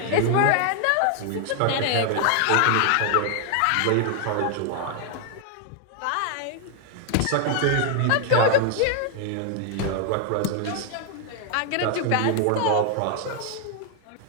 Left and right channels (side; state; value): both; different; correlation 0.00